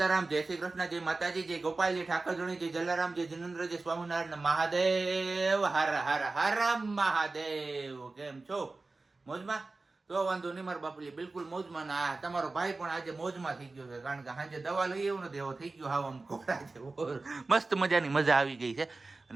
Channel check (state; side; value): quieter; left; 3.5 dB